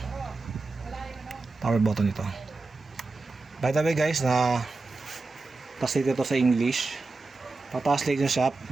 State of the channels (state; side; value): quieter; left; 3.6 dB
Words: power button ito. By the way guys, translate ito sa English. Pa-translate nyo siya,